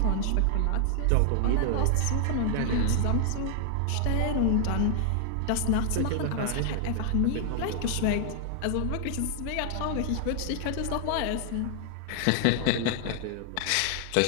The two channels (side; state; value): both; different; correlation 0.00